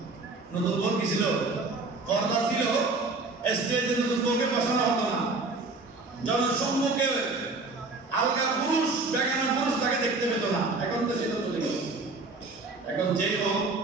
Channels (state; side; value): quieter; left; 3.6 dB